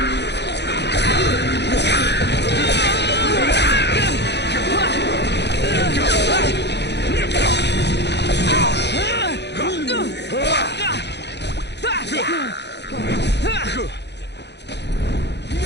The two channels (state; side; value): late; right; 0.50 ms